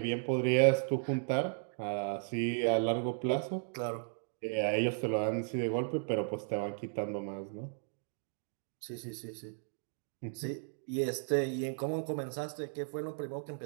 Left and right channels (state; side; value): silent; left; digital silence